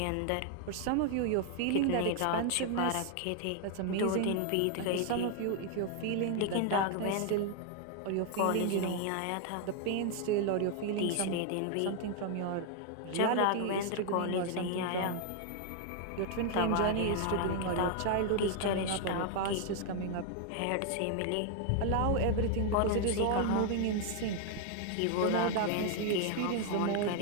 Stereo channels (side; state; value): both; different; correlation 0.00